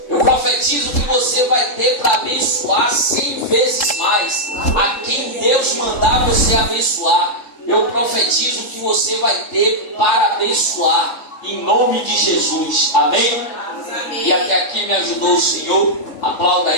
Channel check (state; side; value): late; right; 3.7 ms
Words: Eu profetizo que você vai ter para abençoar 100 vezes mais a quem Deus mandar você abençoar. Eu profetizo que você vai ter para abençoar, em nome de Jesus. Amém? E até aqui me ajudou o Senhor. Aplauda